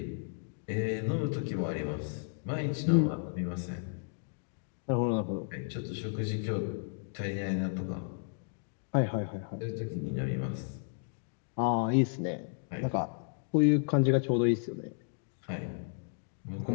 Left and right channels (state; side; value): silent; right; digital silence